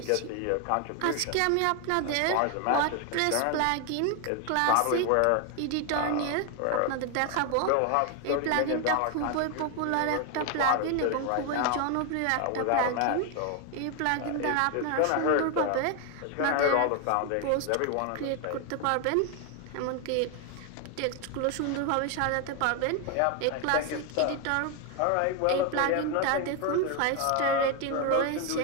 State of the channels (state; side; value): different; both; correlation 0.01